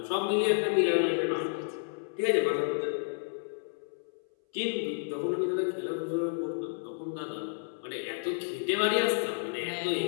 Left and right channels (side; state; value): right; silent; 57 dB below the other